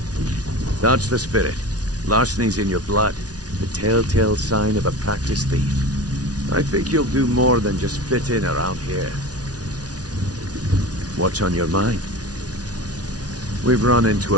That's the spirit. Larceny's in your blood. The telltale sign of a practiced thief. I think you'll do more than just fit in around here. What's on your mind? We've run into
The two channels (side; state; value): left; late; 0.68 ms